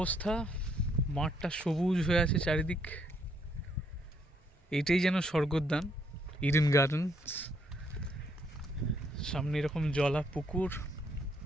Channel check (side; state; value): both; normal; correlation 0.71